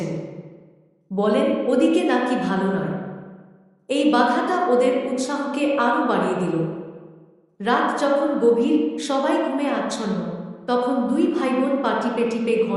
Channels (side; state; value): both; identical; correlation 1.00